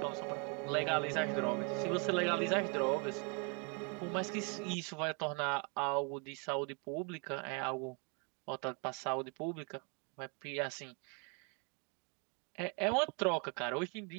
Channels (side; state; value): left; quieter; 35.2 dB